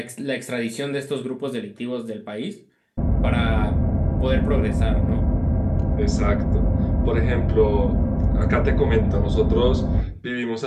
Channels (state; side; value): identical; both; correlation 1.00